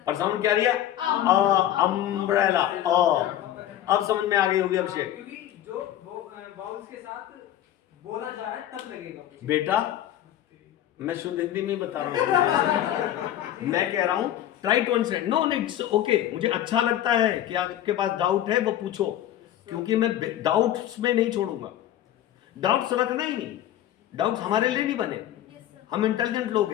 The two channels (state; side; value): quieter; right; 12.2 dB